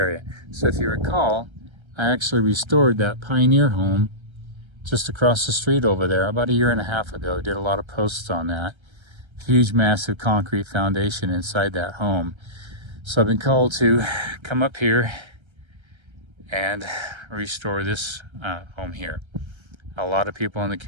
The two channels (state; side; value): late; left; 1.3 ms